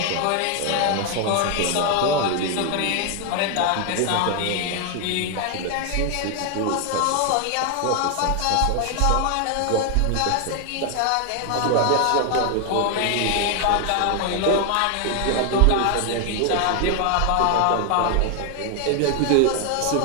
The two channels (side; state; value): both; different; correlation 0.01